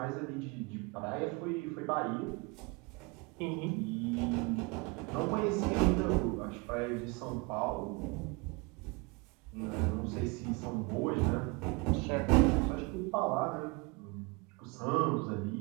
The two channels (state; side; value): quieter; left; 27.6 dB